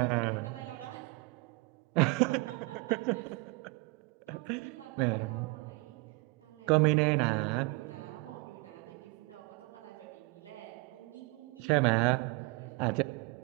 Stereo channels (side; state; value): left; quieter; 26.1 dB